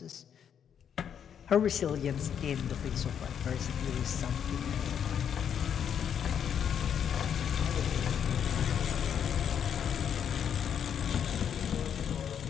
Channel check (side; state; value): right; quieter; 8.3 dB